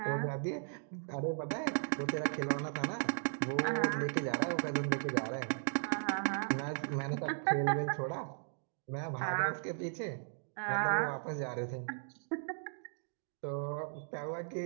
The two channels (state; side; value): silent; left; digital silence